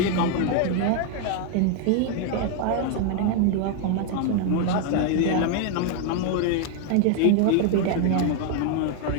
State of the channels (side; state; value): both; different; correlation 0.00